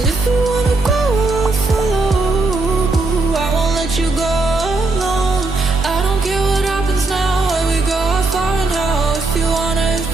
if you wanna go, I'll follow. I won't let you go alone. I don't care what happens now, where we go, how far and how. If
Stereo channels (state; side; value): quieter; left; 3.3 dB